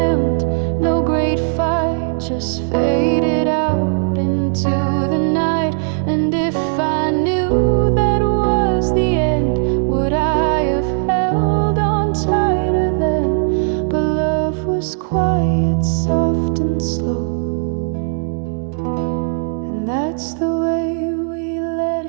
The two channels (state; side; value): silent; left; digital silence